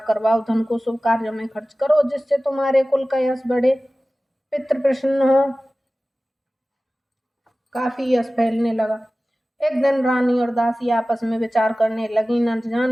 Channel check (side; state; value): both; normal; correlation 0.96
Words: करवाओ, धन को शुभ कार्यों में खर्च करो, जिससे तुम्हारे कुल का यश बढ़े, पितृ प्रसन्न हो। काफी यश फैलने लगा। एक दिन रानी और दासी आपस में विचार करने लगी, न